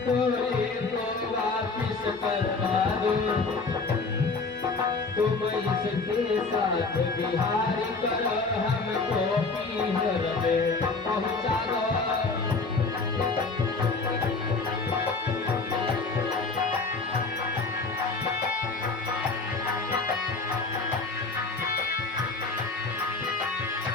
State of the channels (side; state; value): right; quieter; 4.0 dB